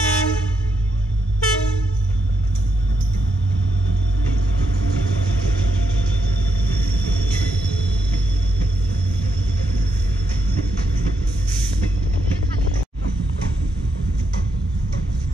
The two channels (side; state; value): both; normal; correlation 0.80